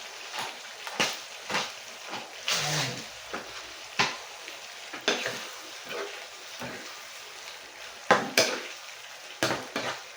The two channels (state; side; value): identical; both; correlation 1.00